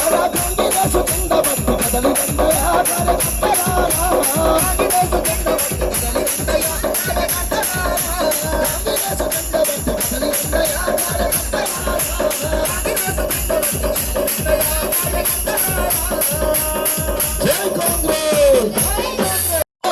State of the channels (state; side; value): identical; both; correlation 1.00